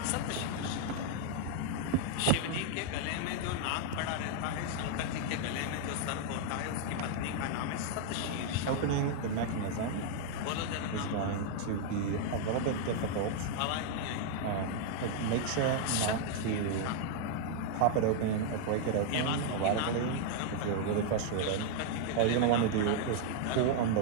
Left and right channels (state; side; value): different; both; correlation 0.00